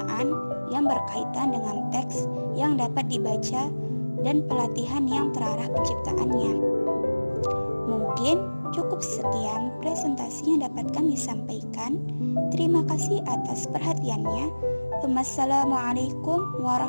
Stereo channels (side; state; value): both; inverted; correlation -1.00